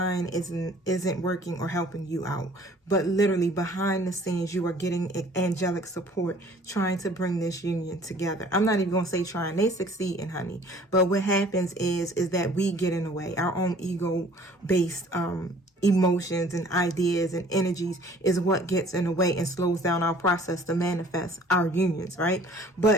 isn't working or helping you out, but literally behind the scenes you are getting angelic support trying to bring this union together. I'm not even gonna say trying, they succeeding, honey. But what happens is that we get in the way. Our own ego based emotions and ideas and energies is what gets in the way and slows down our process to manifest our unions, right?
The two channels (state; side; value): normal; both; correlation 0.53